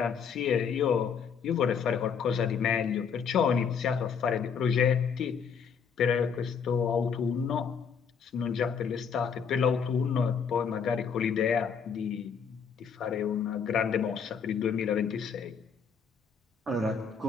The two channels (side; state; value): right; quieter; 6.6 dB